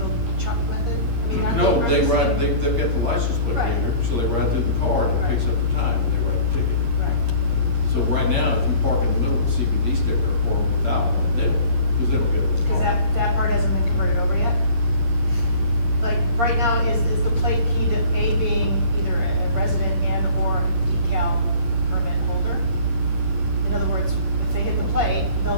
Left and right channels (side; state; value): left; late; 8.6 ms